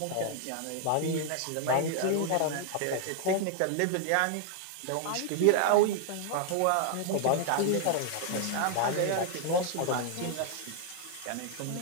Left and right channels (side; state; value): both; different; correlation 0.00